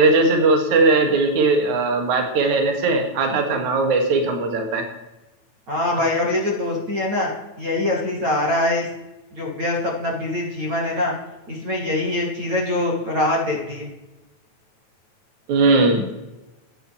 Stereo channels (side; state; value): left; late; 9.1 ms